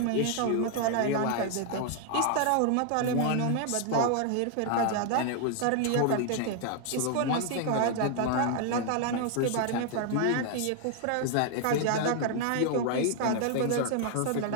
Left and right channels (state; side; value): different; both; correlation 0.00